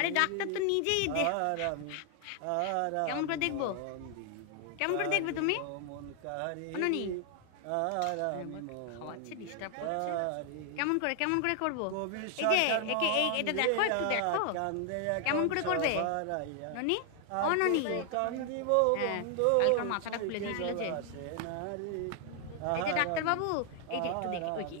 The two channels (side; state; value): both; different; correlation 0.00